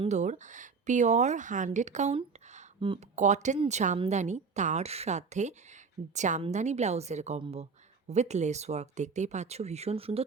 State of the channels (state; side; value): quieter; left; 5.1 dB